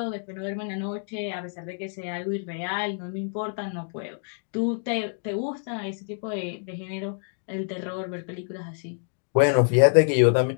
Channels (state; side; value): silent; right; 60 dB below the other